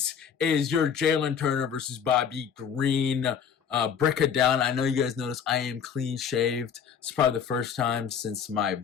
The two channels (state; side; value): quieter; right; 7.6 dB